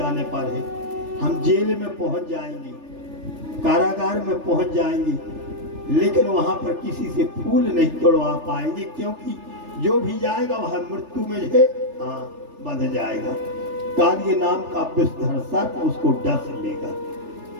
पर है। हम जेल में पहुंच जाएंगे, कारागार में पहुंच जाएंगे, लेकिन वहां पर किसी से फूल नहीं तोड़वा पाएंगे, क्योंकि जो भी जाएगा वह मृत्यु में है बंध जाएगा। कालिय नाम का विषधर सर्प उसको डस लेगा।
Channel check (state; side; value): late; left; 3.4 ms